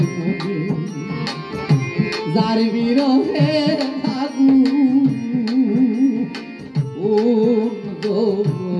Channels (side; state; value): both; identical; correlation 1.00